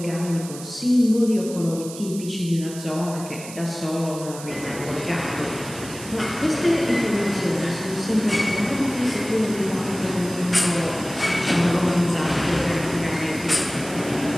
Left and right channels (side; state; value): right; noise; hiss, 13 dB below the sound